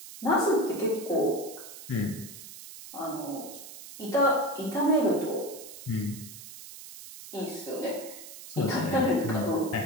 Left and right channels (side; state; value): right; noise; hiss, 14 dB below the sound